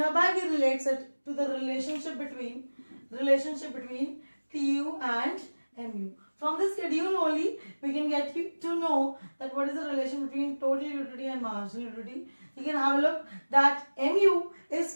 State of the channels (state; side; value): inverted; both; correlation -1.00